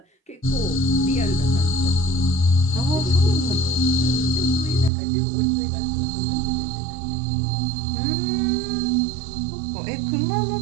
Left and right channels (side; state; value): left; drops out; at 4.9 s